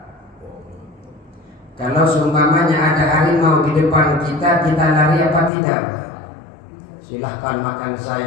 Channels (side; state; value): right; drops out; at 5.5 s